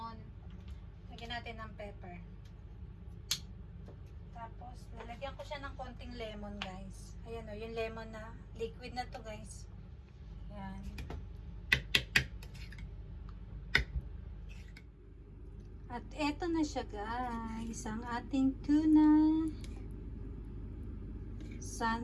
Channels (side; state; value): both; identical; correlation 1.00